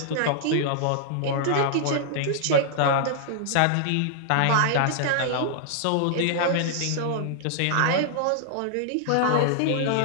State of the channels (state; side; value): different; both; correlation -0.01